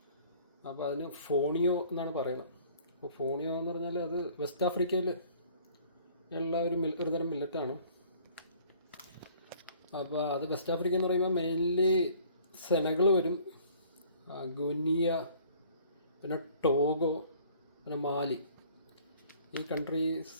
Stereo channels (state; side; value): inverted; both; correlation -0.54